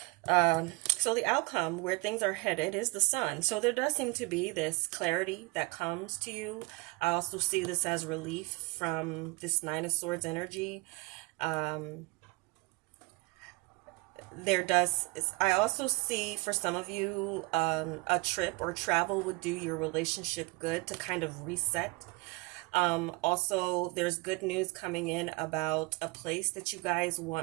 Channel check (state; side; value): quieter; left; 26.5 dB